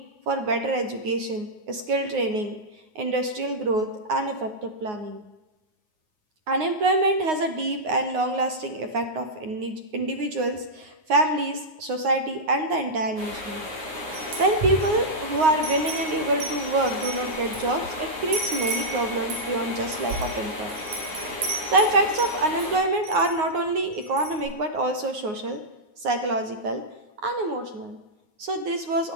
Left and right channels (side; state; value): left; late; 9.5 ms